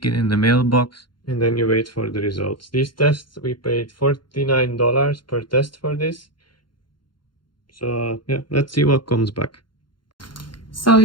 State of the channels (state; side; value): late; right; 0.72 ms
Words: it in the mailbox, and then you wait for the results. These tests, we paid $49 per test for this. So yeah, let's see what comes back. So